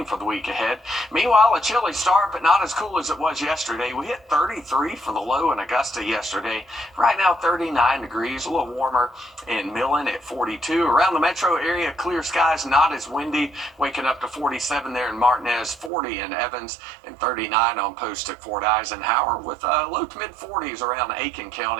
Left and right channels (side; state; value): left; drops out; at 15.9 s